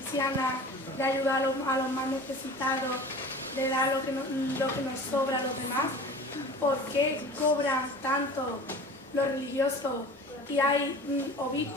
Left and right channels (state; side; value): normal; both; correlation 0.39